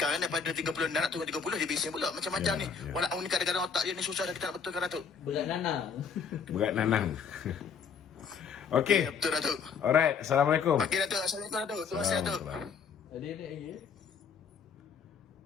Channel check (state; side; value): quieter; right; 6.2 dB